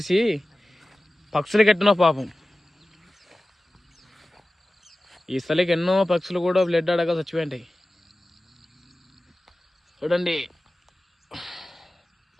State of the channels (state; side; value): normal; both; correlation 0.96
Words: పక్షులు కట్టిన పాపం. ఈ స్థలికి ఎన్నో పక్షులు కూడా బ్లడ్ అడగా చచ్చిపోయింటాయి. చూడండి,